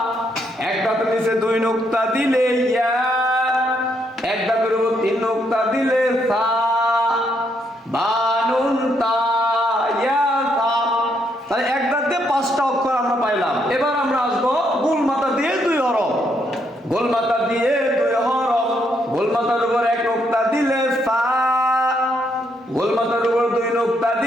একটার নিচে 2 নোক্তা দিলে ইয়া, একটার উপর 3 নোক্তা দিলে সা, বানুন তা ইয়া সা। তাহলে একটাতে 5টা অক্ষর আমরা পাইলাম। এবার আমরা আসবো গোল মাথা দিয়ে 2 হরফ, গোল মাথা দিয়ে 2 হরফ, গোল মাথার উপর 1 নোক্তা দিলে সা, গোল মাথার উপর 2 নোক্তা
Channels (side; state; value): both; normal; correlation 0.75